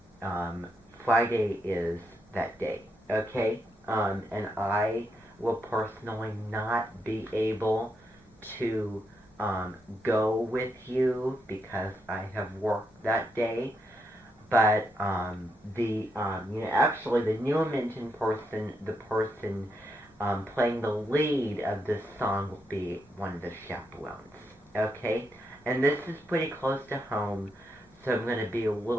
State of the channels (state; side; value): normal; both; correlation 0.81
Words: Friday is that day, okay? And I will personally not be able to go with you because I have work that day. But actually the New Minton person, the person playing the lead of this song will be one of the chaperones, okay? And this is pretty close to home, so I'm going to be a